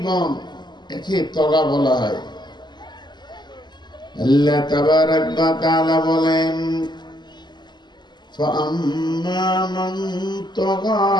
একে তগা বলা হয়। আল্লাহ তাবারাক ওয়া তাআলা বলেন, ফাআম্মা মান তাগা,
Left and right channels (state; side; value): late; right; 0.21 ms